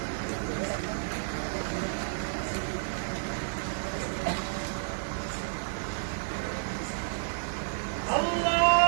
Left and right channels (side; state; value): left; silent; digital silence